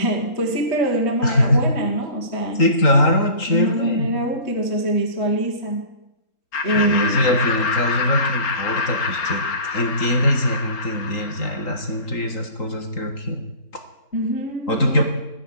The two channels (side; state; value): right; late; 3.8 ms